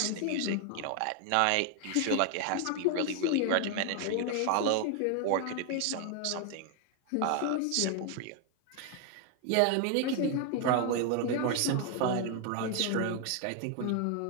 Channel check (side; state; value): both; different; correlation 0.01